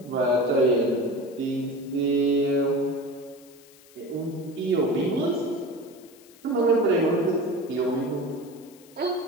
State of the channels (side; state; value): left; noise; hiss, 25 dB below the sound